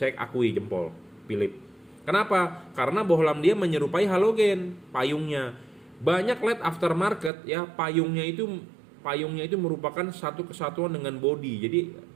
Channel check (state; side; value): drops out; left; at 7.3 s